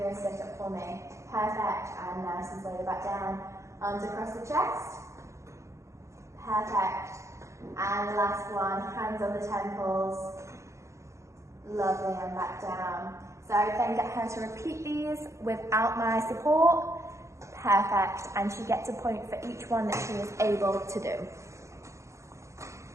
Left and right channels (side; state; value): left; late; 0.14 ms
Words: a sit-up for me? Perfect. And nice and slowly back down. Arms across the chest. Perfect. And the last one, hands on the temples. Lovely, and back down. So I would then get her to repeat these without my support. Perfect. And she gets a point for each one that she is able to do.